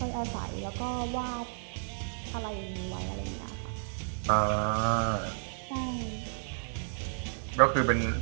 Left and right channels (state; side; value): silent; left; digital silence